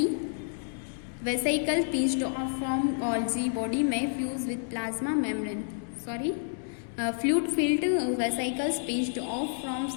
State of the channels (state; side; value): silent; right; digital silence